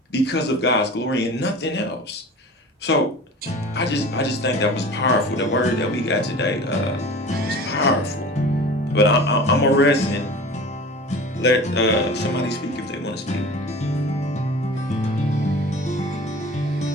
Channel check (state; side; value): normal; both; correlation 0.38